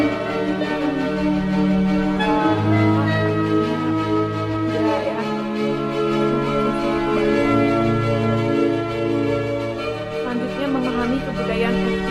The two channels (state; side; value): identical; both; correlation 1.00